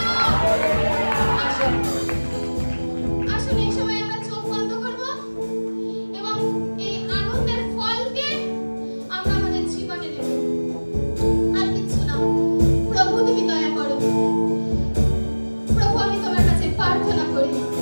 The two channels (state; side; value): inverted; both; correlation -1.00